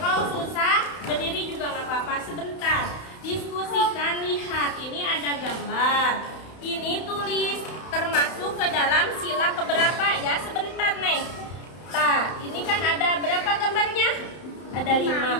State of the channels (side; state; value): right; late; 31 ms